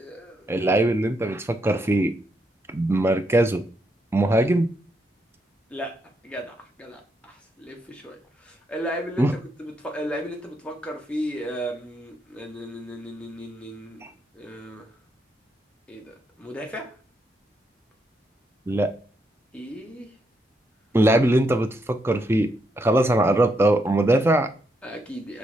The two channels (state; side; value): normal; both; correlation 0.79